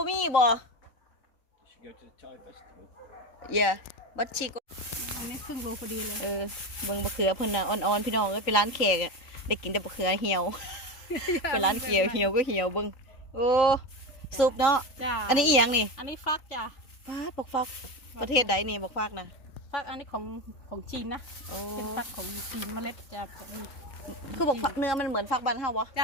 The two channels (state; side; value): late; right; 3.4 ms